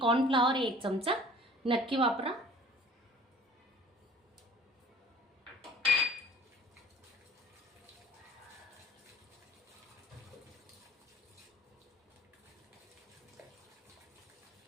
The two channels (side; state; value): both; normal; correlation 0.49